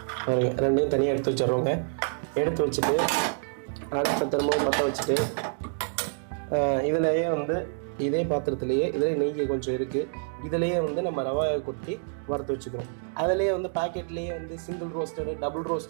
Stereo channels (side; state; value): left; silent; 60 dB below the other